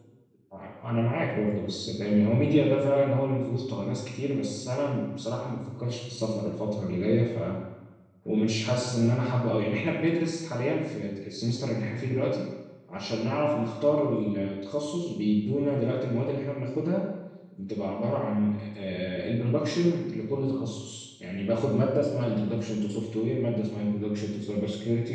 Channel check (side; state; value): both; identical; correlation 1.00